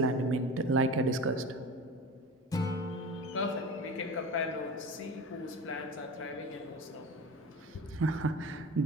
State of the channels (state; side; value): normal; both; correlation 0.32